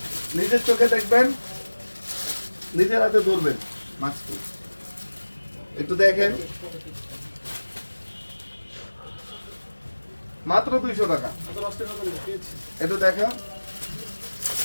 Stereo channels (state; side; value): inverted; both; correlation -1.00